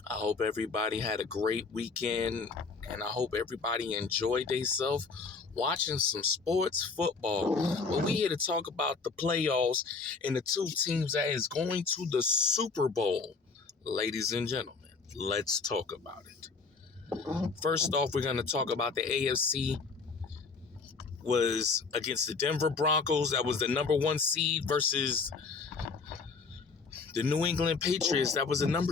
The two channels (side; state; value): right; quieter; 4.7 dB